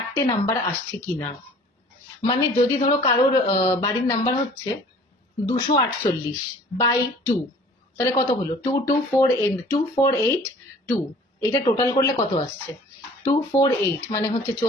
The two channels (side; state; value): both; normal; correlation 0.50